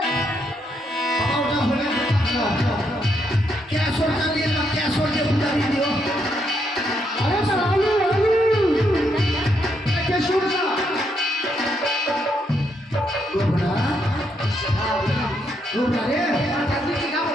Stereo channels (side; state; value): both; normal; correlation 0.77